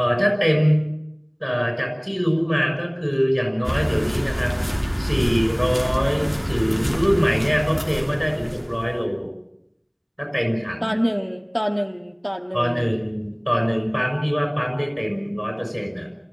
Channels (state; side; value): identical; both; correlation 1.00